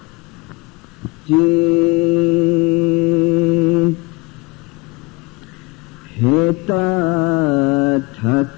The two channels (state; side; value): quieter; right; 25.0 dB